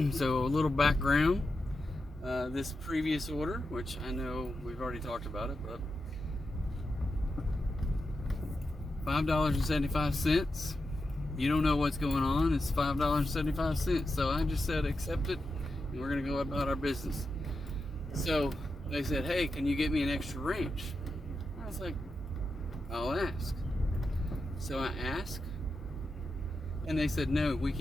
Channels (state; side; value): normal; both; correlation 0.88